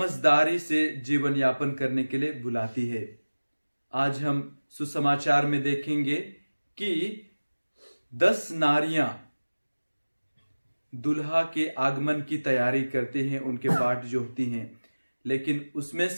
से जीवन यापन करने के लिए बुलाती है। आज हम सुसमाचार में देखेंगे कि 10 नारियां दुल्हा के आगमन की तैयारी करती हैं, उनके पाठ जो होती हैं, लेकिन उसमें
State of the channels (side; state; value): both; inverted; correlation -1.00